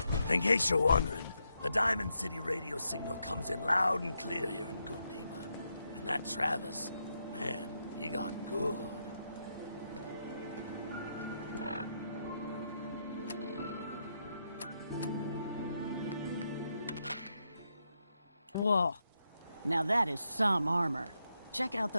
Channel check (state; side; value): inverted; both; correlation -0.82